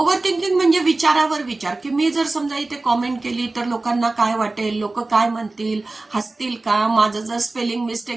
थिंकिंग म्हणजे विचारावर विचार, की मी जर समजा इथे कॉमेंट केली तर लोकांना काय वाटेल, लोक काय म्हणतील, हसतील का, माझं जर स्पेलिंग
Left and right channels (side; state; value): left; quieter; 3.2 dB